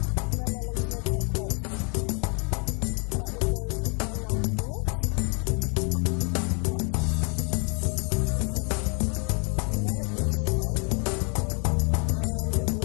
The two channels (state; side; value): quieter; right; 36.0 dB